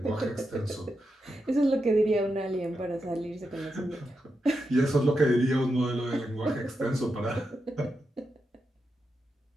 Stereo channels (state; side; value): normal; both; correlation 0.87